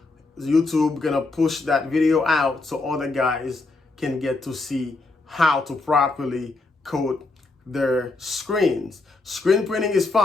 YouTube gonna push that video out so other guys can get to see how to properly coat their screens. Screen printing is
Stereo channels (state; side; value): quieter; right; 3.4 dB